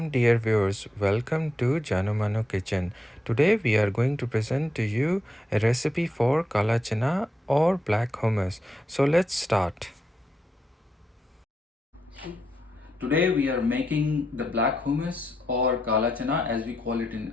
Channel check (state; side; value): normal; both; correlation 0.83